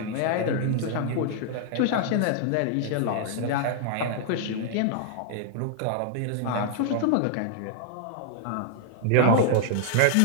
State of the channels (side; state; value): both; different; correlation -0.01